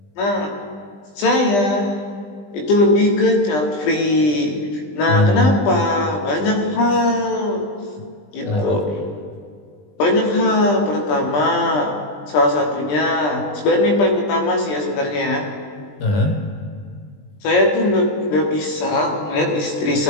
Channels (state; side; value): late; right; 20 ms